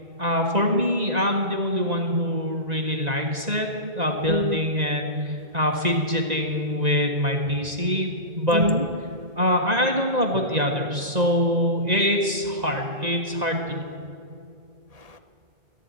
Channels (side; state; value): left; late; 1.9 ms